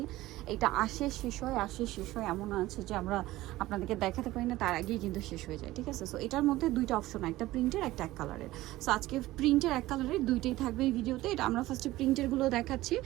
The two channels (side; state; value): left; quieter; 17.1 dB